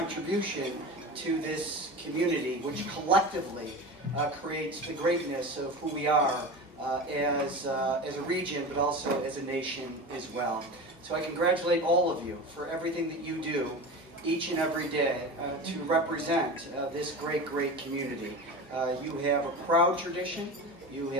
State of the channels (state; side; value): normal; both; correlation 0.29